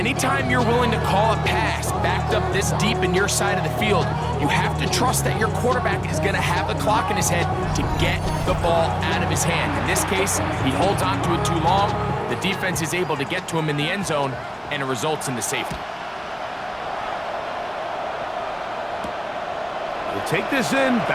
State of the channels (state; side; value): identical; both; correlation 1.00